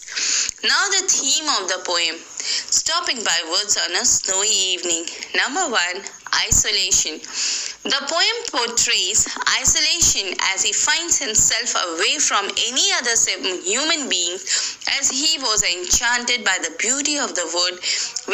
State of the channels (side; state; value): both; identical; correlation 1.00